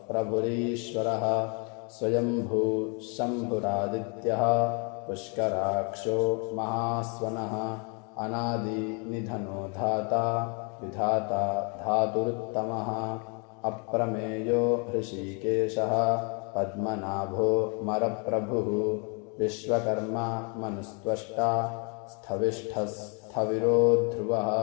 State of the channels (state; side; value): quieter; right; 35.5 dB